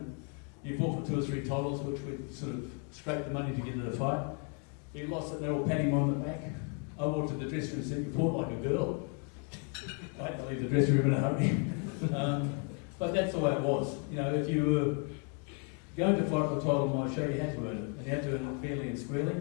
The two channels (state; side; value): quieter; right; 39.7 dB